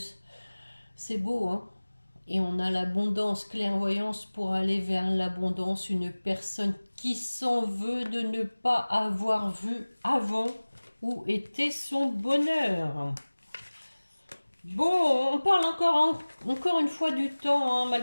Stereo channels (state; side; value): inverted; both; correlation -1.00